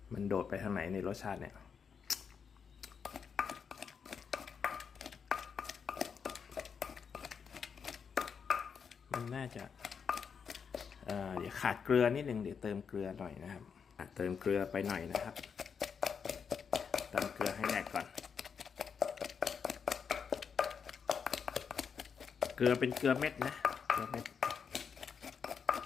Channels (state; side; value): quieter; right; 6.5 dB